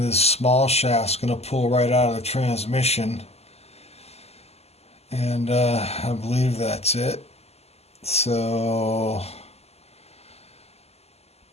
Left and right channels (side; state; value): right; late; 0.30 ms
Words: this small shaft's going to pull right out of the transmission. And I believe that's it. So